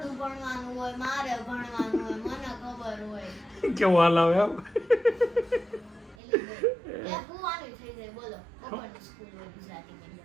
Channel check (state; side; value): drops out; left; at 6.2 s